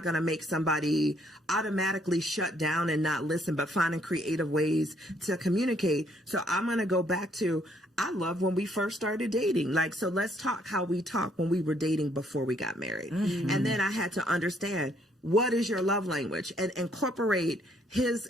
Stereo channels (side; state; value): both; normal; correlation 0.67